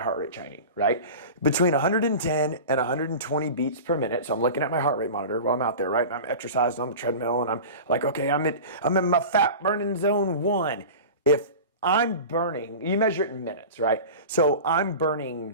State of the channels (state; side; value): inverted; both; correlation -0.33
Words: rate training, right? Between 110 and 120 beats per minute. So I'm looking at my heart rate monitor while I'm out there, right? And I'm exercising on the treadmill and I'm like, okay, I'm in my fat burning zone 1. If I'm burning, you measure it in minutes, right? So I'm